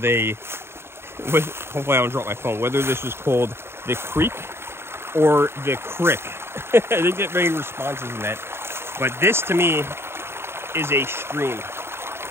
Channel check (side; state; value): left; late; 0.12 ms